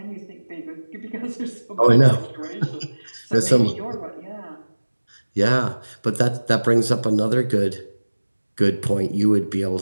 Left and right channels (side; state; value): both; inverted; correlation -1.00